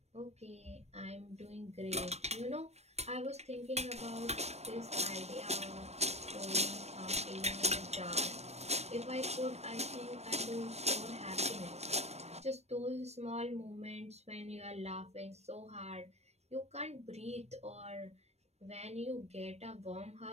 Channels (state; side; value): late; left; 0.31 ms